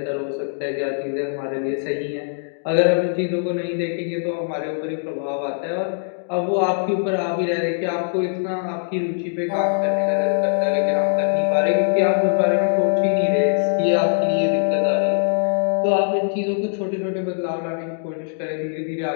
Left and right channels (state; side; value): silent; right; digital silence